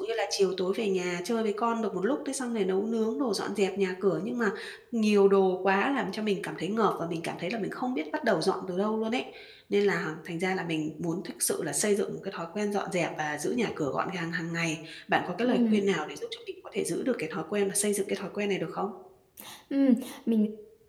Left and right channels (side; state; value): both; identical; correlation 1.00